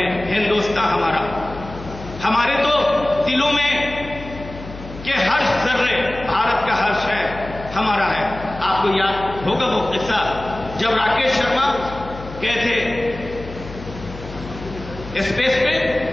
हिंदुस्तान हमारा। हमारे तो दिलों में कि हर जर्रे भारत का हर्ष है, हमारा है। आपको याद होगा वो किस्सा जब राकेश शर्मा गए थे स्पेस पे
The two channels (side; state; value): left; noise; hum, 13 dB below the sound